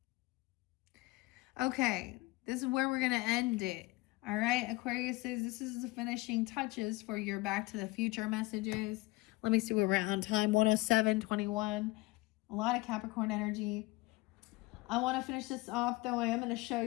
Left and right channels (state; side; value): quieter; right; 21.8 dB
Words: Okay, this is where we're going to end it. All right, Aquarius says this is the finishing touches for your Back to the Future messages. Let me see where we're at on time. 107:21. A lot of Capricorn energy. I want to finish this off, though. I am going to show